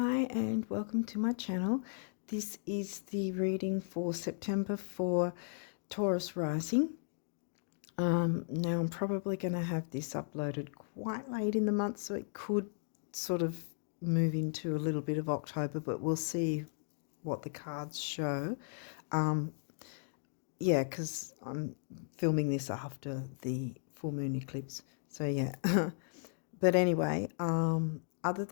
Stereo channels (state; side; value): silent; right; digital silence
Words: and welcome to my channel. This is the reading for September for Taurus rising. Now I'm probably going to have this uploaded quite late in the month, so it could sort of move into a little bit of October, but we'll see what the cards show. Yeah, because I'm filming this after the full moon eclipse, so yeah. But anyway, other